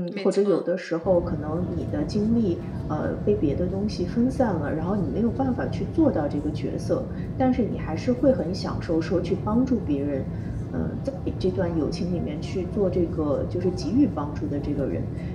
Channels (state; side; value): identical; both; correlation 1.00